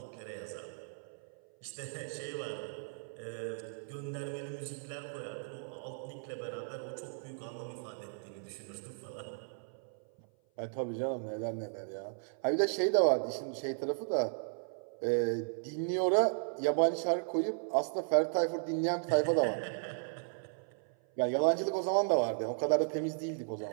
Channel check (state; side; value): silent; left; 54 dB below the other